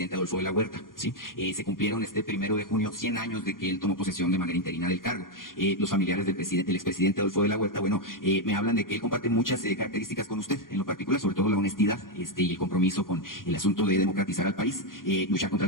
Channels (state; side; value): late; right; 0.91 ms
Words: Adolfo de la Huerta, ¿sí? Se cumplieron este 1 de junio 100 años de que él tomó posesión de manera interina del cargo. Los familiares del expresidente Adolfo de la Huerta, me hablan de que él comparte muchas características con usted, en lo particular, sobre todo la honestidad y el compromiso con el asunto de democratizar al país, luchar contra